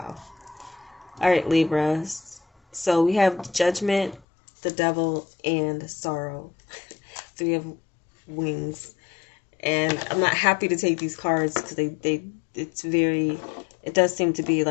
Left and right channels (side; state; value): right; drops out; at 4.2 s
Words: All right, Libras. So we have Judgment, the Devil, and Sorrow. 3 of wings. And I'm not happy to take these cards because it does seem to be